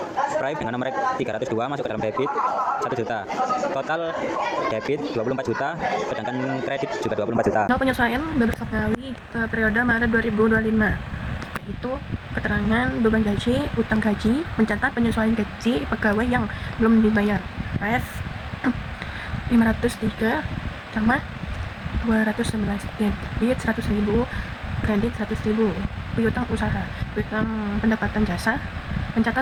Prive dengan nomor 302 masuk ke dalam debit 1 juta. Total debit 24 juta, sedangkan kredit juga 24 juta. Soal penyesuaian Beberapa Ngawi periode Maret 2025, yaitu keterangan beban gaji, utang gaji, mencatat penyesuaian gaji pegawai yang belum dibayar. Ref 503 sama 211, debit 100.000, kredit 100.000. Piutang usaha, piutang pendapatan jasa,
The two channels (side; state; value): both; identical; correlation 1.00